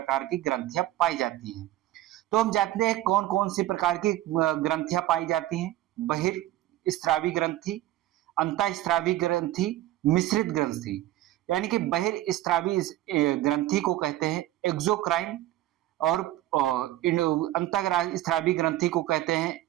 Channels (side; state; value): left; quieter; 14.9 dB